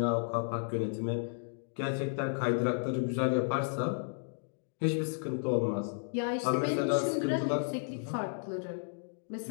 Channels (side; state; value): right; silent; digital silence